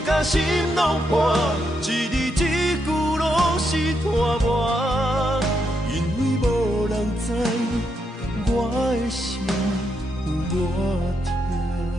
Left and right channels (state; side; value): normal; both; correlation 0.80